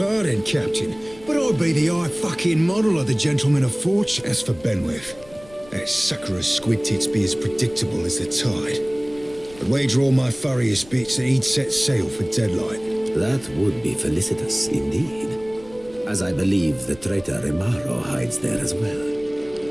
Captain, but I'd be the high fucking model of the gentleman of fortune. As for Benwith, that sucker of squid tits be as predictable as the tide. I'd wager all my furriest bits that he'd set sail for Deadlight. That would be felicitous indeed, as I believe the traitor Remaro hides there as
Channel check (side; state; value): left; noise; rumble, 22 dB below the sound